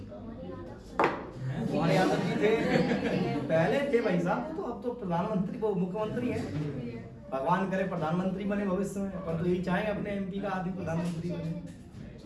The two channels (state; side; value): identical; both; correlation 1.00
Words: कुमार यादव जी थे, पहले थे भाई साहब, तो अब तो प्रधानमंत्री, वो मुख्यमंत्री है। भगवान करे प्रधानमंत्री बने भविष्य में, पर तो यही चाहेंगे अपने एमपी का आदमी प्रधानमंत्री बने।